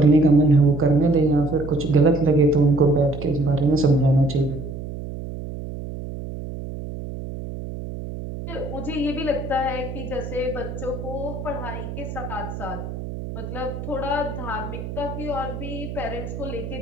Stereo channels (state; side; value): noise; right; hum, 8 dB below the sound